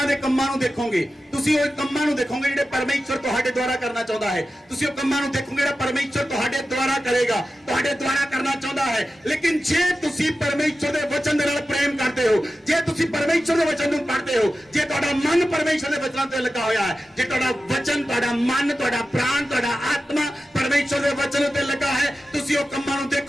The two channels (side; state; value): both; normal; correlation 0.93